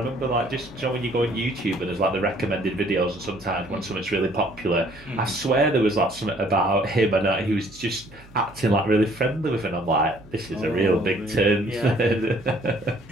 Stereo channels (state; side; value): noise; right; hum, 23 dB below the sound